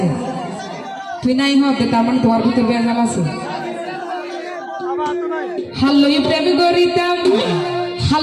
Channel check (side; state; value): both; identical; correlation 1.00